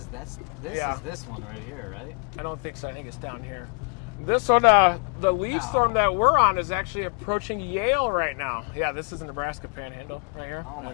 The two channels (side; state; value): right; quieter; 38.7 dB